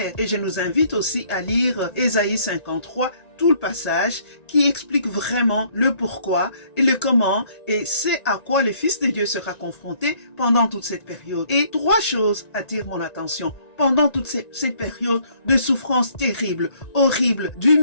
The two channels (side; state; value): right; late; 1.9 ms